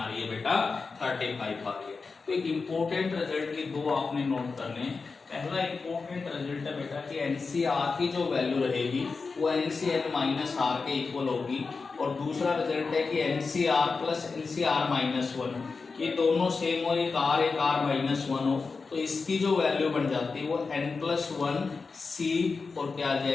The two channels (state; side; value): quieter; right; 4.5 dB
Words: रही है बेटा, 35 आ गई। तो एक इम्पोर्टेंट रिजल्ट की दो आपने नोट करने। पहला इम्पोर्टेंट रिजल्ट है बेटा कि एनसीआर की जो वैल्यू रहेगी वो एनसीएल माइनस आर के इक्वल होगी, और दूसरा रिजल्ट है कि एनसीआर प्लस एनसीआर माइनस 1 ये दोनों सेम हो, एक आर माइनस 1 हो, तो इसकी जो वैल्यू बन जाती है वो n+1 c और क्या आ